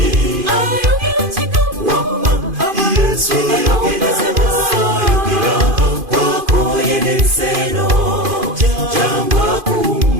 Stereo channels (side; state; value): left; late; 2.5 ms